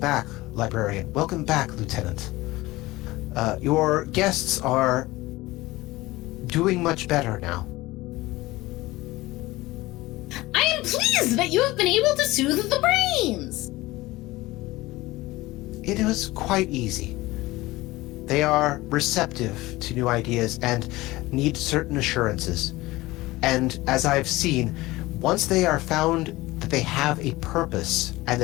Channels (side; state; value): right; quieter; 19.4 dB